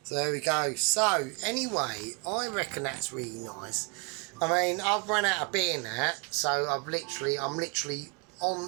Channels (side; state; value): left; quieter; 32.3 dB